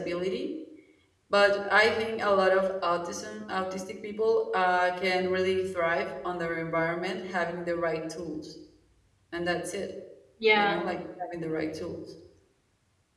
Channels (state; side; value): identical; both; correlation 1.00